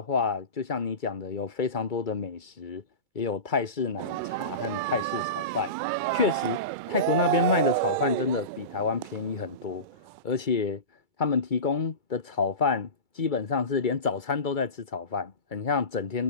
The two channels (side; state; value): right; late; 2.3 ms